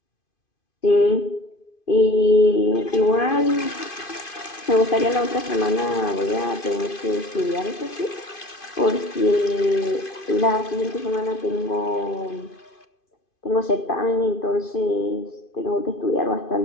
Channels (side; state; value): right; late; 2.5 ms